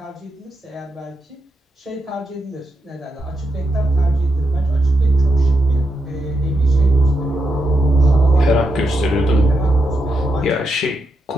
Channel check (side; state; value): both; normal; correlation 0.83